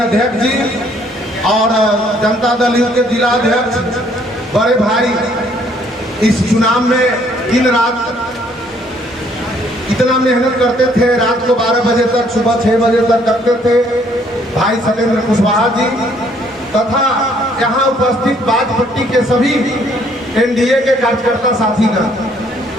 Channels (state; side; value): normal; both; correlation 0.64